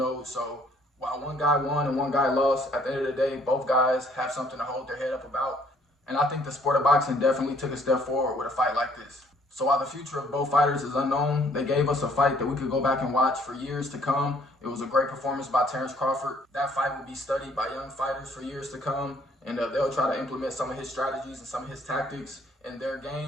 so while one guy won and one guy lost, at the end of the day, both guys have something to hold their head up about. And I think the sport of boxing definitely took a step forward with a fight like this. So while the future of both fighters is unknown, they gave us a fight that we could go back and watch for years to come. It was a great performance by Terence Crawford. That fight will be studied by young fighters for years to come, and they'll try to implement some of his strategies and some of his tactics in their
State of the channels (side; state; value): both; normal; correlation 0.62